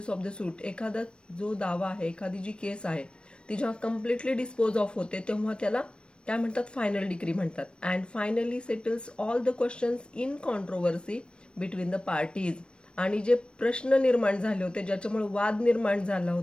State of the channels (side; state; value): right; late; 0.056 ms